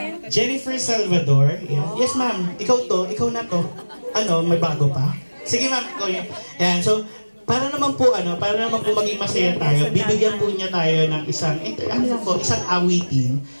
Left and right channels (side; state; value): both; inverted; correlation -1.00